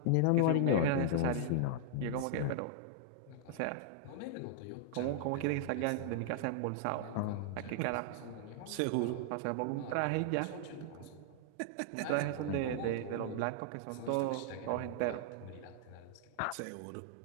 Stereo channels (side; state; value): both; different; correlation -0.01